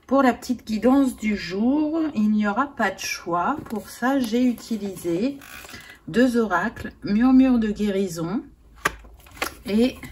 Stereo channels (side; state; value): both; identical; correlation 1.00